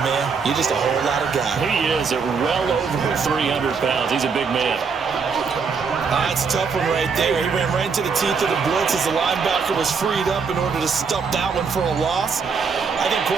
man, you're just a whole lot of guy. He is at well over 300 pounds. He's a big man. That's a tough one right there. He ran right into the teeth of the blitz as the linebacker was freed up in order to stop that one for a loss. I think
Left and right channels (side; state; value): left; quieter; 5.5 dB